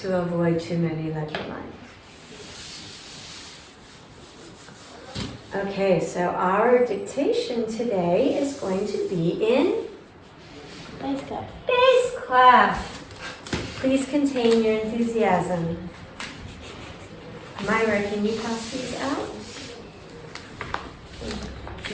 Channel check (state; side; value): identical; both; correlation 1.00